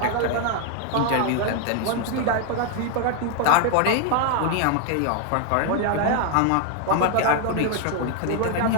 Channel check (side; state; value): both; different; correlation 0.00